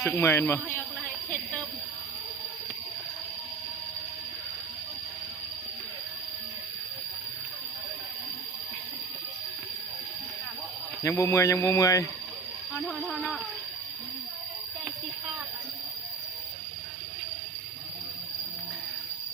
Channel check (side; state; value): left; quieter; 4.9 dB